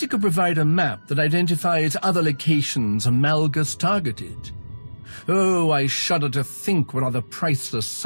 you could provide a map that identifies other locations Malgus targeted. Oh, I shudder to think what other priceless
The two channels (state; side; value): inverted; both; correlation -1.00